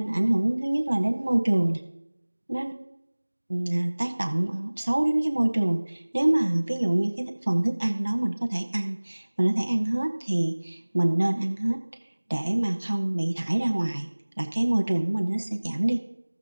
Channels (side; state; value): both; inverted; correlation -1.00